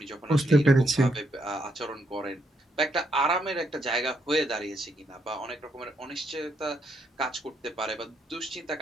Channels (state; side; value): normal; both; correlation 0.76